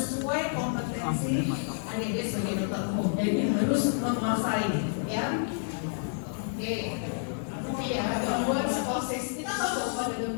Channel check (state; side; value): silent; right; digital silence